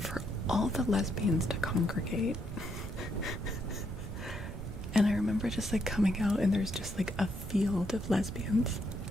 all the lesbians to congregate. And I remember just like coming out and there's just like a field of lesbians.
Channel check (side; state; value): right; noise; rumble, 8 dB below the sound